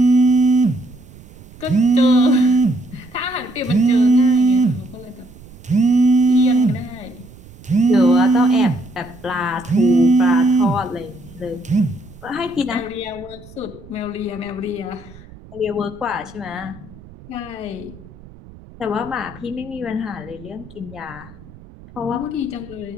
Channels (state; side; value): noise; right; rumble, 20 dB below the sound